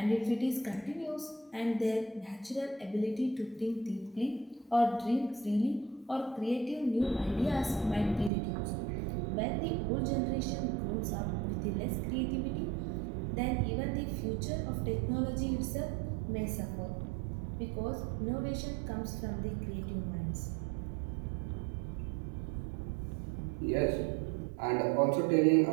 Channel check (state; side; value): drops out; left; at 8.3 s